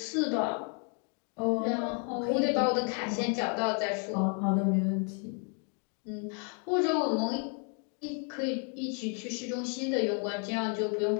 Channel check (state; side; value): quieter; right; 39.3 dB